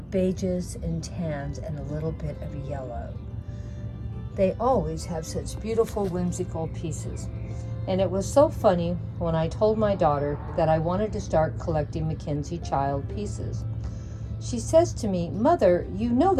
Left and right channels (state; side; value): identical; both; correlation 1.00